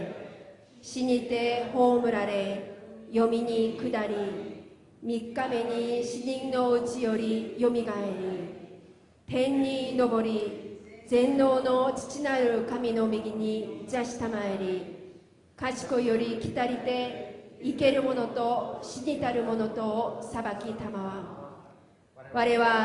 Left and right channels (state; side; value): identical; both; correlation 1.00